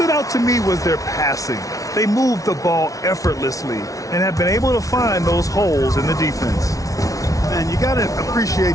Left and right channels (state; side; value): late; right; 0.17 ms